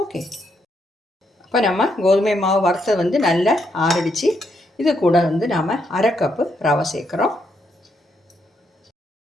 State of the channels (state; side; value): normal; both; correlation 0.77